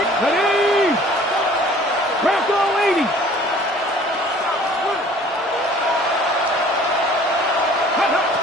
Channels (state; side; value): normal; both; correlation 0.51